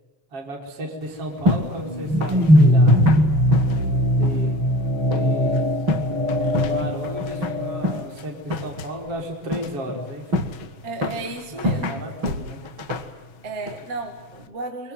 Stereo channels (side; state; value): left; late; 6.3 ms